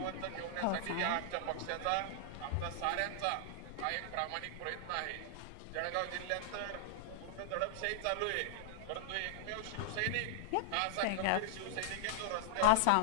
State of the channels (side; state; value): both; different; correlation -0.01